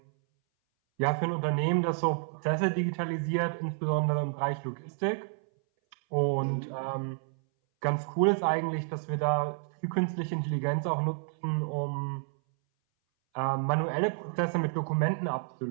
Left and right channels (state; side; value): silent; left; 58 dB below the other